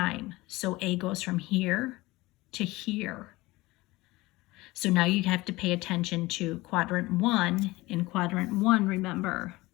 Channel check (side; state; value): right; quieter; 20.4 dB